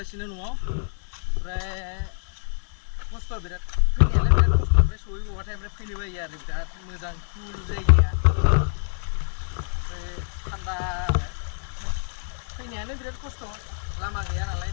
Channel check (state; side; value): silent; right; digital silence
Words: न'आव ओमफ्राय खस्थ' बिराद फैनायालाय बिराद खस्थ' ओमफ्राय सहैबावबाथाय ओमफ्राय फैनो बायो आरो बिराद मोजां कुल जायगाया ओमफ्राय थान्दा फैनायानो बिराद खस्थ' लामा गैया नालाय